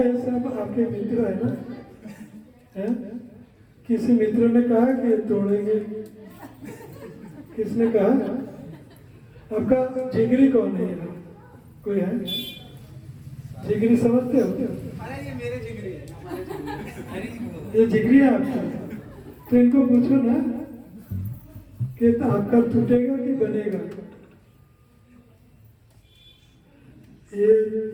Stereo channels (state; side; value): identical; both; correlation 1.00